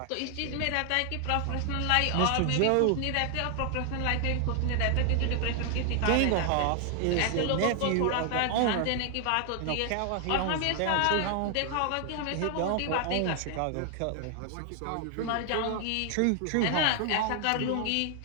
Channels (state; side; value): different; both; correlation 0.00